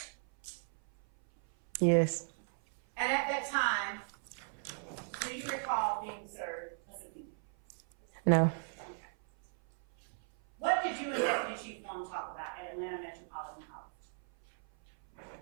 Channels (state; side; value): silent; left; 54 dB below the other